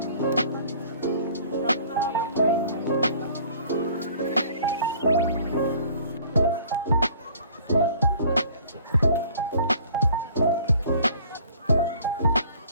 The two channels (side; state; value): both; inverted; correlation -0.53